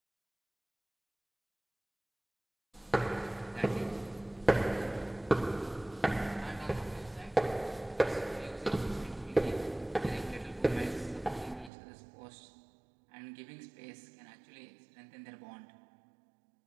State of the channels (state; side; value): drops out; left; at 11.7 s